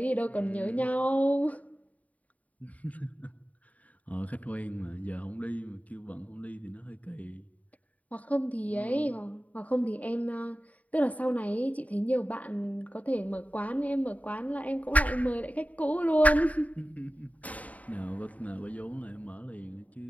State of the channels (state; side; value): late; right; 0.071 ms